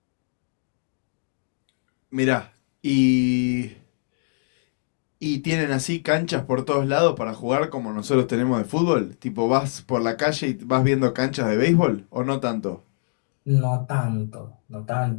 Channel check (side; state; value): right; silent; digital silence